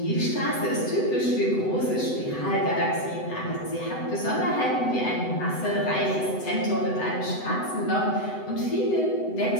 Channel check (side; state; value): right; late; 7.9 ms